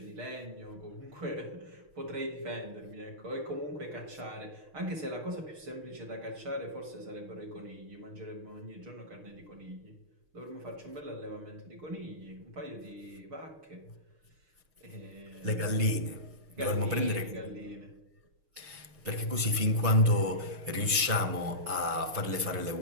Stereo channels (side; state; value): left; late; 6.5 ms